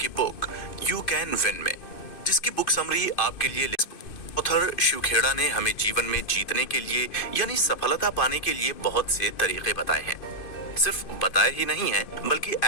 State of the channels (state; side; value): late; right; 2.5 ms